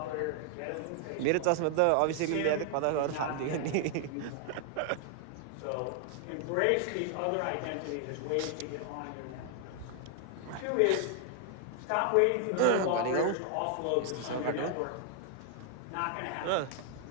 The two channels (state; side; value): different; both; correlation 0.00